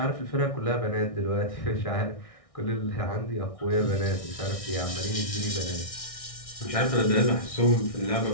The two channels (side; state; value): right; late; 1.6 ms